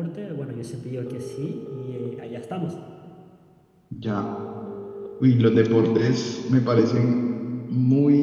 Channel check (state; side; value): identical; both; correlation 1.00